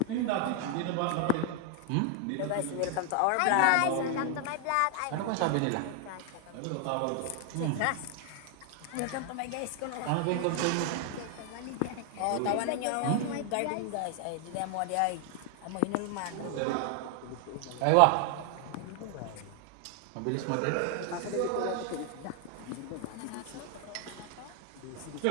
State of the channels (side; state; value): both; different; correlation 0.00